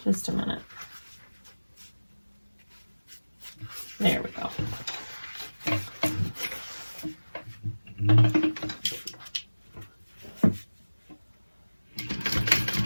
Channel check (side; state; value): both; inverted; correlation -1.00